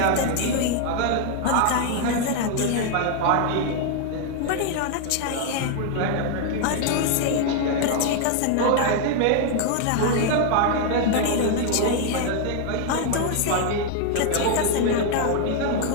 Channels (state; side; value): different; both; correlation 0.00